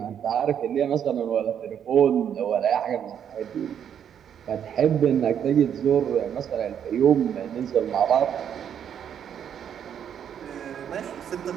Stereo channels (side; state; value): left; quieter; 8.8 dB